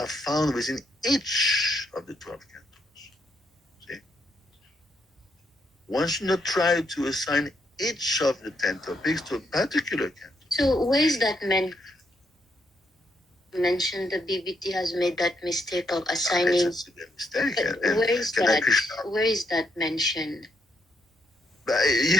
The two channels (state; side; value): normal; both; correlation 0.76